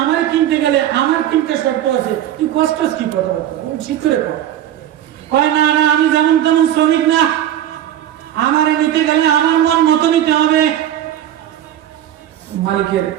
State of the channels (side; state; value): left; quieter; 11.6 dB